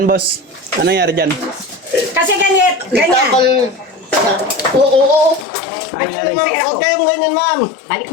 boss? Ano nangyari dyan? Kasi ganyan. Tapal. Oo. Ano nangyari? Huwag kayong ganyan, ma'am. Balik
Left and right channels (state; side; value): drops out; right; at 5.5 s